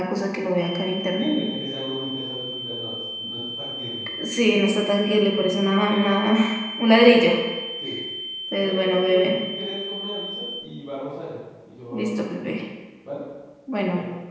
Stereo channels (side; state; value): both; identical; correlation 1.00